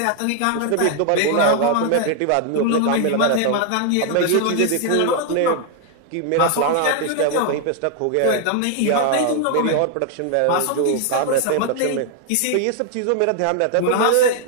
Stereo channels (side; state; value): both; different; correlation 0.00